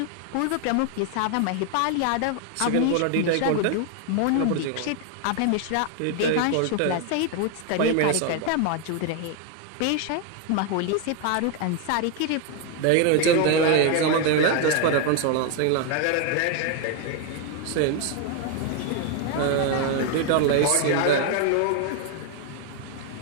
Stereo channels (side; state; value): both; different; correlation 0.01